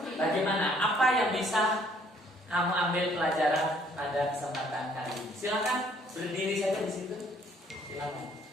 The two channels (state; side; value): normal; both; correlation 0.62